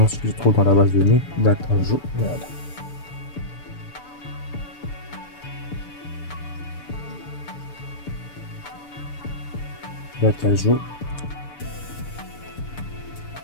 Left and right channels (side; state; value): right; late; 6.9 ms